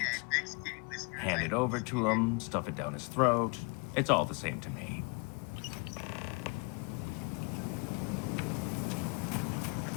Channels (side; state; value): right; quieter; 31.6 dB